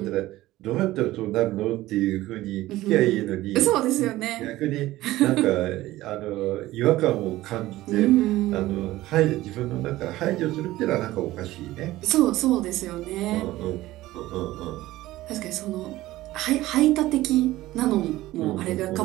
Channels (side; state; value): left; quieter; 16.7 dB